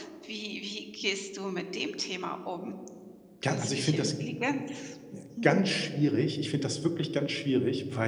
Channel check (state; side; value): identical; both; correlation 1.00